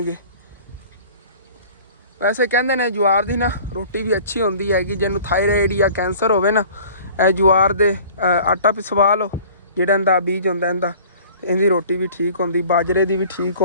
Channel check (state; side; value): inverted; both; correlation -0.47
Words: ਵੈਸੇ ਕਹਿੰਦੇ ਨੇ ਜਵਾਰ ਦੀ ਨਾ ਰੋਟੀ ਵੀ ਅੱਛੀ ਹੁੰਦੀ ਹੈਗੀ। ਜਿਹਨੂੰ ਥਾਇਰਾਇਡ ਜਾਂ ਕੈਂਸਰ ਹੋਵੇ ਨਾ, ਇਹ ਜਵਾਰ ਦੇ ਆਟਾ ਪਿਸਵਾ ਲਓ, ਜਿਹੜਾ ਇਹਦਾ ਬੀਜ ਹੁੰਦਾ ਇਹਦਾ, ਇਹਦੀ ਰੋਟੀ ਵੀ ਠੀਕ ਹੁੰਦੀ, ਬਾਜਰੇ ਦੀ ਵੀ ਠੀਕ